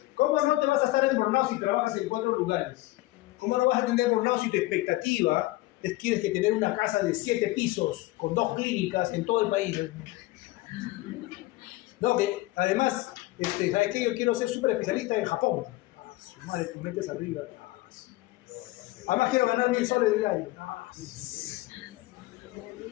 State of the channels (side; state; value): right; quieter; 19.2 dB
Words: ¿Cómo no te vas a estar en burnout si trabajas en 4 lugares? ¿Cómo no vas a tener burnout si tu expectativa es que tienes que tener una casa de 7 pisos con 2 clínicas en todo el país? No, que además, ¿sabes qué? Yo quiero ser súper especialista en Japón. Su madre, tú metes arriba. Además quiero ganar 1.000 soles diarios.